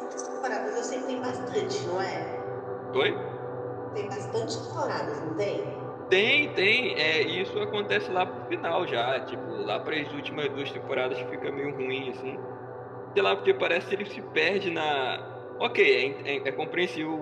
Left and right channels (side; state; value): both; identical; correlation 1.00